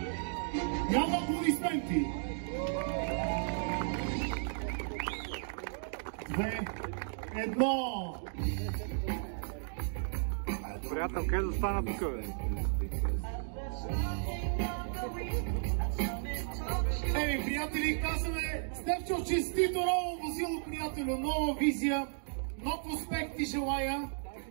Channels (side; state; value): left; silent; digital silence